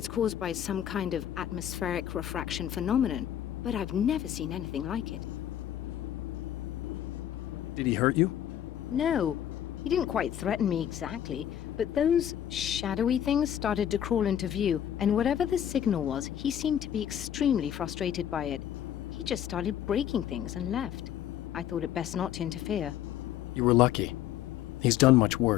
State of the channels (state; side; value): quieter; right; 10.7 dB